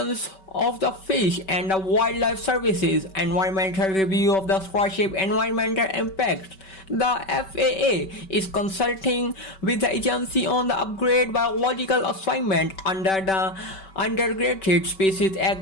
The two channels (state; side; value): late; right; 5.2 ms